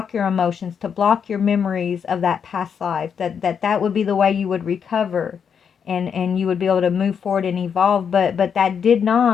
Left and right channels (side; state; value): right; quieter; 7.1 dB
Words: your emotions, to block your memories of that past life, that would be the way you would recover, and you would be able to move forward and evolve. But that did